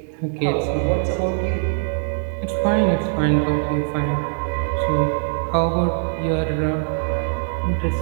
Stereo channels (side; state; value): left; silent; digital silence